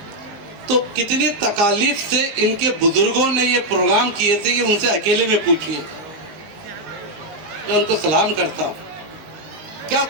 तो कितनी तकालीफ से इनके बुजुर्गों ने ये प्रोग्राम किए थे, ये उनसे अकेले में पूछिए। मैं उनको सलाम करता हूँ। क्या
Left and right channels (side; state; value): left; late; 19 ms